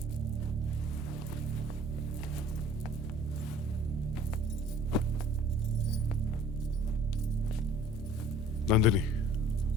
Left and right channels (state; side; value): noise; left; hum, 11 dB below the sound